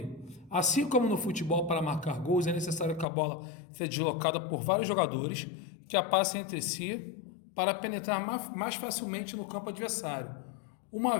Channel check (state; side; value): drops out; right; at 3.1 s